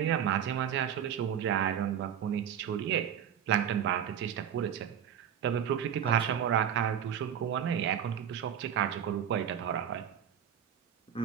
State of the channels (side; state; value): left; quieter; 9.1 dB